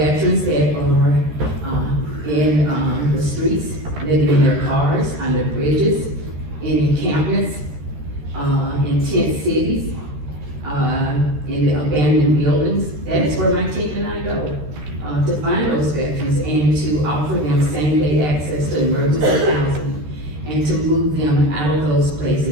that are in the streets, living in their cars, under bridges, in encampments, in tent cities, in abandoned buildings, that is where my team and I go to find those veterans and to offer them same-day access to emergency housing and to move them out of those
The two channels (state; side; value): late; left; 13 ms